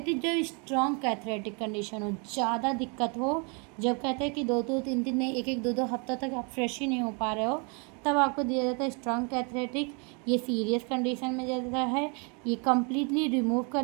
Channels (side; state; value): left; quieter; 34.2 dB